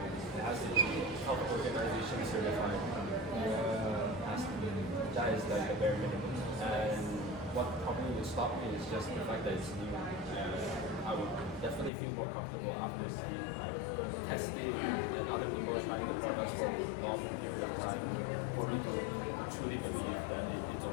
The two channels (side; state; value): right; drops out; at 11.9 s